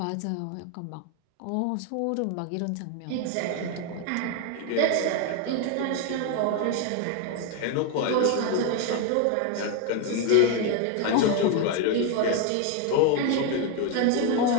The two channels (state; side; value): different; both; correlation 0.01